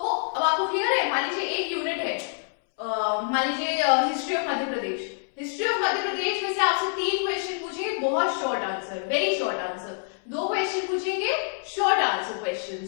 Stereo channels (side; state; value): right; silent; 61 dB below the other